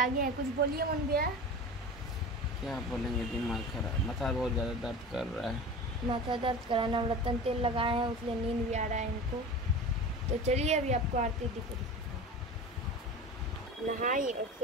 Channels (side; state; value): both; normal; correlation 0.33